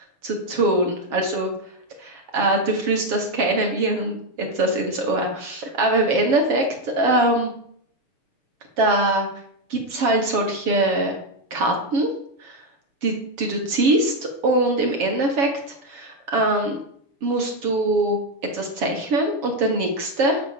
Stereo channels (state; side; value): late; left; 7.2 ms